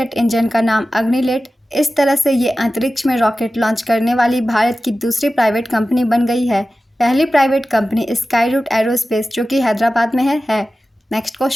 इंजन का नाम अग्निलेट। इस तरह से ये अंतरिक्ष में रॉकेट लॉन्च करने वाली भारत की दूसरी प्राइवेट कंपनी बन गई है। पहली प्राइवेट कंपनी स्काईरूट एरोस्पेस, जो कि हैदराबाद में है। नेक्स्ट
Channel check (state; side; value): normal; both; correlation 0.95